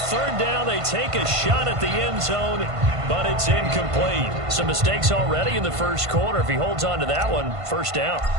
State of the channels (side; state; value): left; late; 1.5 ms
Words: 3rd down, they take a shot at the end zone, but it's incomplete. Some mistakes already in the first quarter. If he holds on to that one, 1st down.